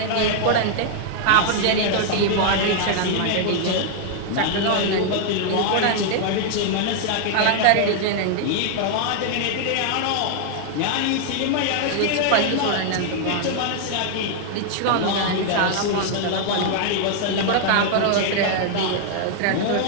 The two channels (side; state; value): both; different; correlation 0.00